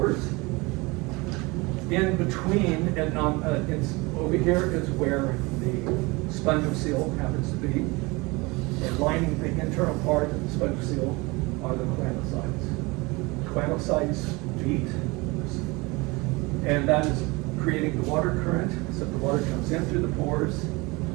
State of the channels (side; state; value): left; quieter; 24.8 dB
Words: In between, and over here is where the spongiocele happens to be. And lining the internal part of the spongiocele are the melanocytes. Melanocytes beat, and that is creating the water current. So the water comes in through the pores